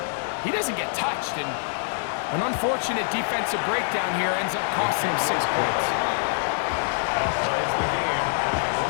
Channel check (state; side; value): silent; right; 62 dB below the other